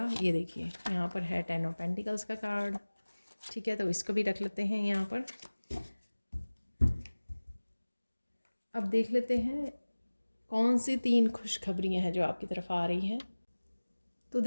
ये देखिए यहाँ पर है 10 ऑफ पेंटिकल्स का कार्ड, ठीक है। तो इसको भी रख लेते हैं यहाँ पर। अब देख लेते हैं कौन सी 3 खुशखबरियाँ हैं जो आपकी तरफ आ रही हैं। तो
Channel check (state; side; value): inverted; both; correlation -1.00